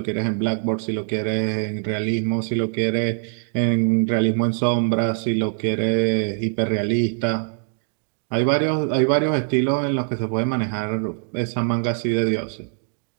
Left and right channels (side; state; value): left; silent; digital silence